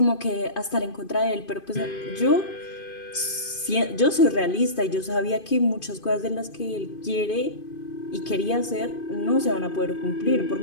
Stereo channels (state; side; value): late; right; 2.5 ms